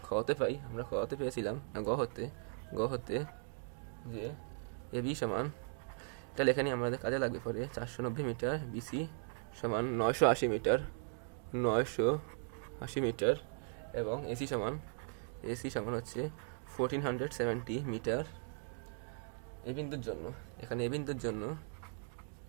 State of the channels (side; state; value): left; silent; 52 dB below the other